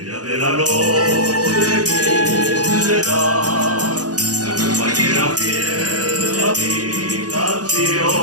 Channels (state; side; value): late; left; 0.68 ms